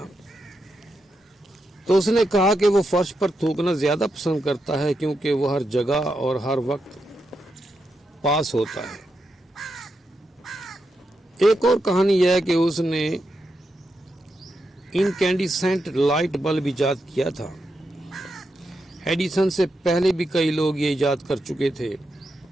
تو اس نے کہا کہ وہ فرش پر تھوکنا زیادہ پسند کرتا ہے کیونکہ وہ ہر جگہ اور ہر وقت پاس ہوتا ہے۔ ایک اور کہانی یہ ہے کہ اس نے انکینڈیسنٹ لائٹ بلب ایجاد کیا تھا۔ ایڈیسن سے پہلے بھی کئی لوگ یہ ایجاد کر چکے تھے،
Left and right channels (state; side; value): normal; both; correlation 0.85